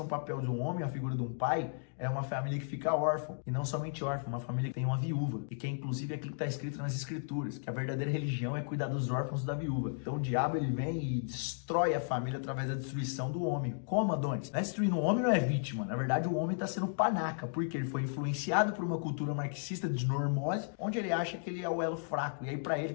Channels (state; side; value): silent; right; digital silence